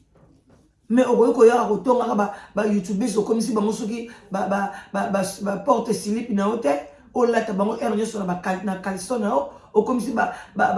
mais okoyiko ya ko tonga ba youtubers okomisi bango soki ba porte slip na hotel olata bango ernyo so na ba na caleçon na okomisi ba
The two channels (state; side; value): identical; both; correlation 1.00